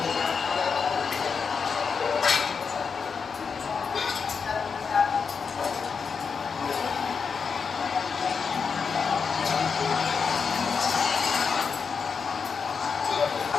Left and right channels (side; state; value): right; quieter; 5.7 dB